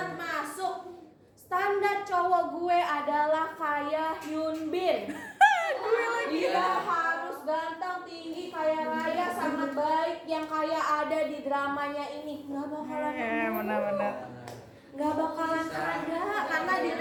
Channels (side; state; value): both; identical; correlation 1.00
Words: standar cowok gue adalah kayak Hyun Bin. Dia harus ganteng, tinggi, kaya raya, sangat baik, yang kayak ada di dramanya ini. Gak bakalan benar-benar. Gak bakalan ada, karena di